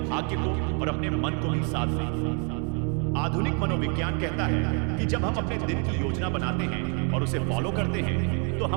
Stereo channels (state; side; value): quieter; left; 37.5 dB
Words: को और अपने मन को भी साध लेंगे। आधुनिक मनोविज्ञान कहता है कि जब हम अपने दिन की योजना बनाते हैं और उसे फॉलो करते हैं तो